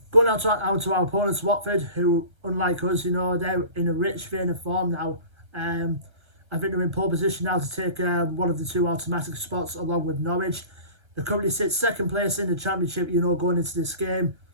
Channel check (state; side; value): late; left; 1.3 ms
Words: Going out to our opponents, Watford, who, unlike us, they're in a rich vein of form now. I think they're in pole position now to take one of the 2 automatic spots along with Norwich. They currently sit 2nd place in the Championship, going into this game.